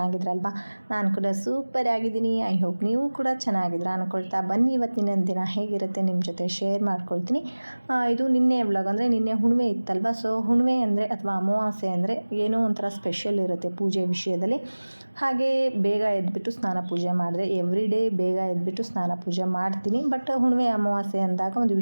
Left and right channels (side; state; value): both; inverted; correlation -1.00